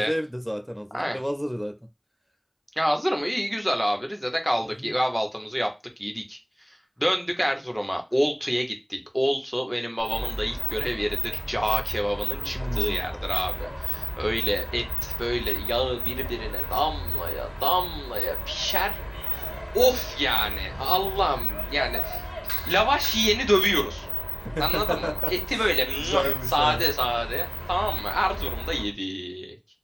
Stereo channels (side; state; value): both; identical; correlation 1.00